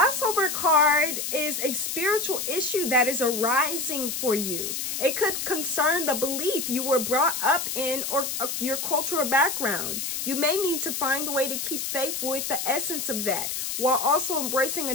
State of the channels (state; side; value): noise; left; hiss, 3 dB below the sound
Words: card is a spiritual issue that is arising for you. It could concern the belief you were brought up in or your cultural background. You may need to find a way to keep faith with the essence of that, while also embracing a